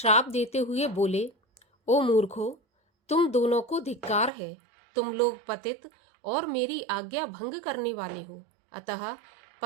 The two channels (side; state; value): left; drops out; at 4.3 s